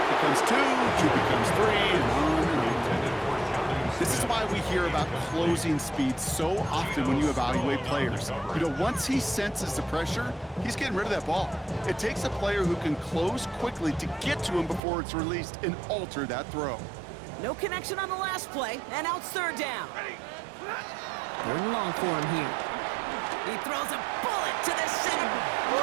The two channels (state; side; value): drops out; left; at 14.8 s